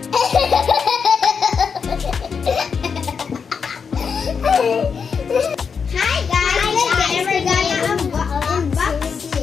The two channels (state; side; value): quieter; right; 6.0 dB